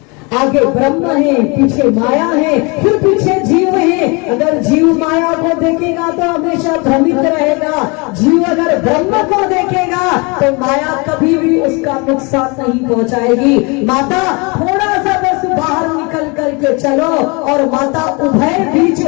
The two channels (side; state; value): right; quieter; 29.2 dB